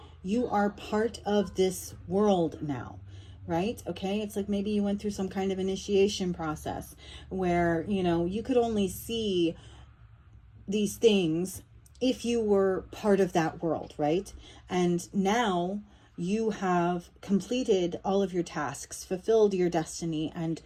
you are part of this world now. Right? Okay. It's like maybe you went through some kind of initiation process where, you could only see these things if you were part of that world. Right? And now you have completed all of your tasks, fulfilled your destiny, and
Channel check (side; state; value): both; identical; correlation 1.00